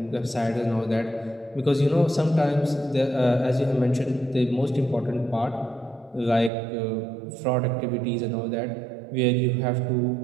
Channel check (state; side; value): drops out; left; at 6.5 s